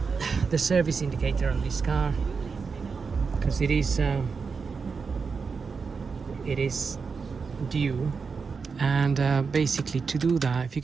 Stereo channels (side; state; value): left; quieter; 5.2 dB